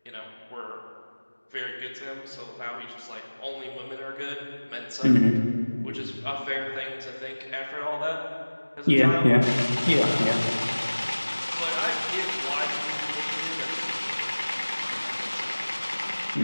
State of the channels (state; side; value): inverted; both; correlation -1.00